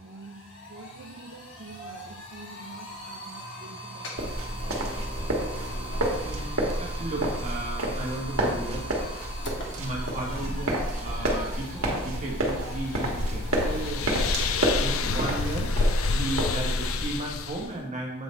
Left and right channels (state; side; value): normal; both; correlation 0.44